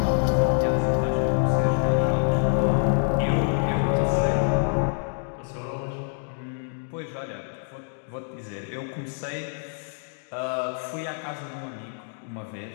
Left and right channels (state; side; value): silent; right; 61 dB below the other